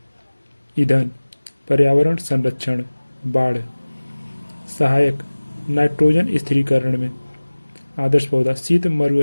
ईंधन पर्यावरण संरक्षण बाढ़। सहायक नाइट्रोजन स्थिरीकरण में। आदर्श पौधा शीत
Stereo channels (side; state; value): both; inverted; correlation -1.00